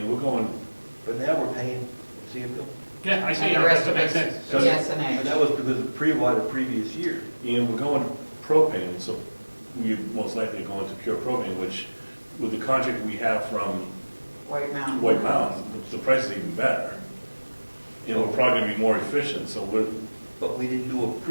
we're going, But now we're paying, see it, Bill? yeah, I see, And the that rest of makes it's sense. yes And and that A. was because of pre-buy the previous year. and we're going propane, so we most likely going to pure propane, which with the contract we have from White Mountain. White Mountain, the price is even better. And we're probably gonna be more efficient, so But we didn't do a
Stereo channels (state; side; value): inverted; both; correlation -1.00